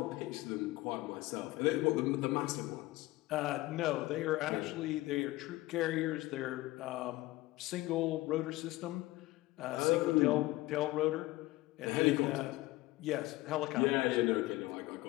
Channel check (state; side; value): quieter; right; 19.0 dB